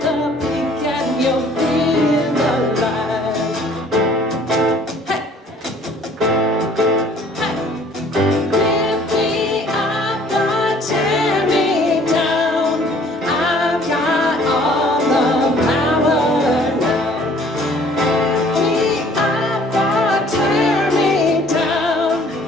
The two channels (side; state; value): both; normal; correlation 0.56